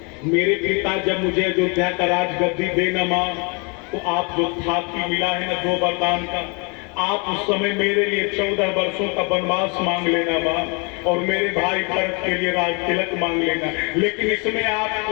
मेरे पिता जब मुझे अयोध्या का राजगद्दी देना मां, तो आप जो थाती मिला है ना 2 वरदान का, आप उस समय मेरे लिए 14 वर्षों का वनवास मांग लेना मां, और मेरे भाई भरत के लिए राज तिलक मांग लेना। लेकिन इसमें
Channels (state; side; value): quieter; right; 32.7 dB